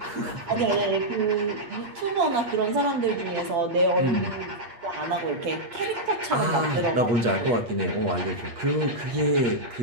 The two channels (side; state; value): left; late; 8.5 ms